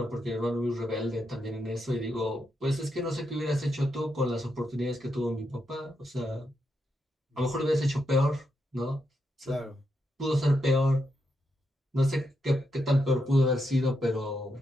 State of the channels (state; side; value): normal; both; correlation 0.83